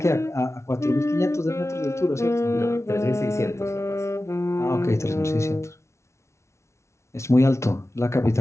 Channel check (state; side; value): late; right; 0.13 ms